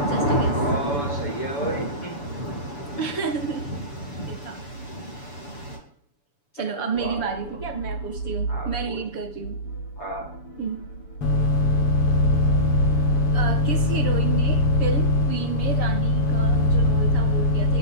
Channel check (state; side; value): late; right; 7.0 ms